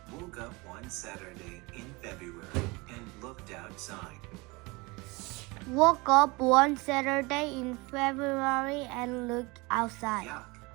woke up one Saturday in February and looked outside. woke up one Saturday in February and looked outside. Yuck,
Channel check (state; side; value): quieter; left; 25.4 dB